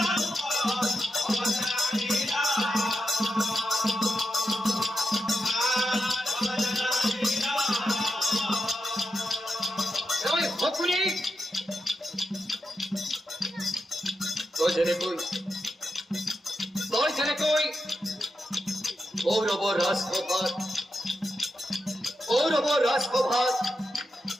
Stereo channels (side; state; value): both; normal; correlation 0.87